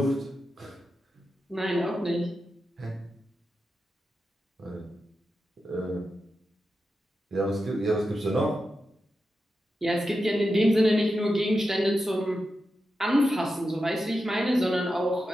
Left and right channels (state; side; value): normal; both; correlation 0.90